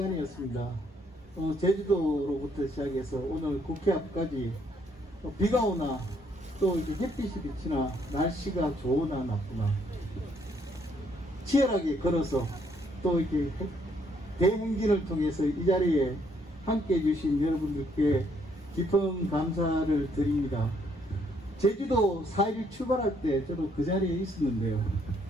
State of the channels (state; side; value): normal; both; correlation 0.70